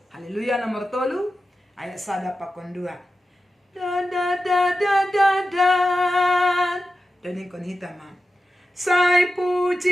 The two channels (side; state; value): both; normal; correlation 0.92